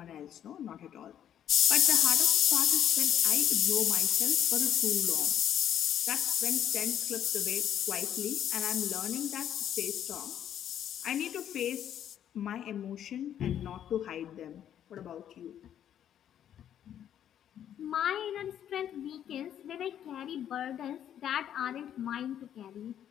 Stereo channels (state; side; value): quieter; right; 10.1 dB